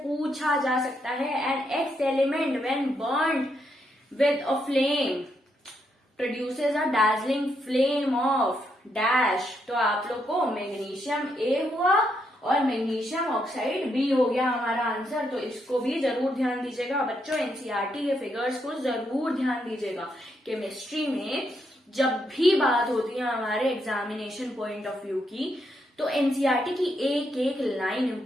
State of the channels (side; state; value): both; normal; correlation 0.78